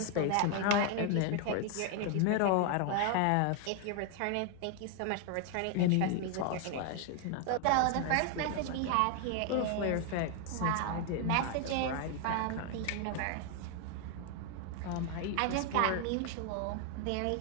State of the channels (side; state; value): both; different; correlation 0.00